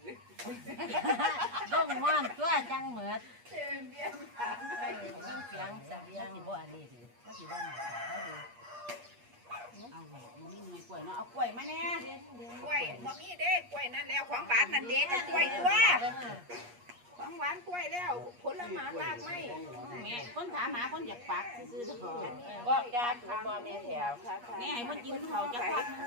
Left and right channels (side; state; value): left; late; 8.4 ms